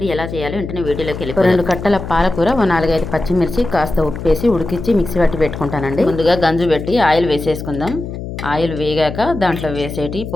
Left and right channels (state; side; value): noise; left; hum, 8 dB below the sound